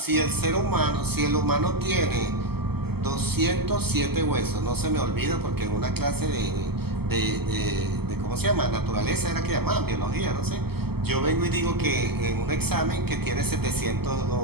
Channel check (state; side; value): late; left; 0.96 ms